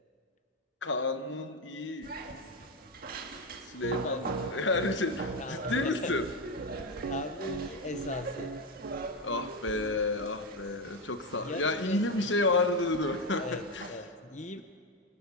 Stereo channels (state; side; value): normal; both; correlation 0.10